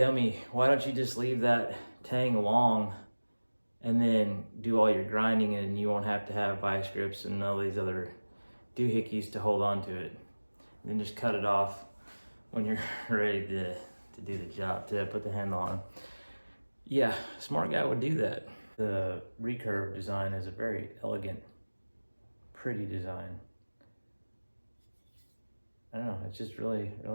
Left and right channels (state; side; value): inverted; both; correlation -1.00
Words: why don't you just leave that tang long and then do all your grinding, and you won't have to have vice grips and all these other doohickeys to hold on to it. And then just cut it off when you're ready to do the job, to put the handle on. Yeah, a smart guy would do that. The recurve design is a very elegant, pretty design. I don't know, it's just really,